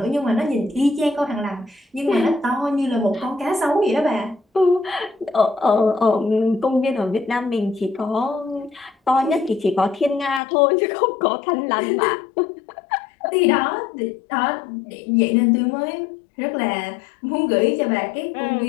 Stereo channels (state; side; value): drops out; right; at 10.4 s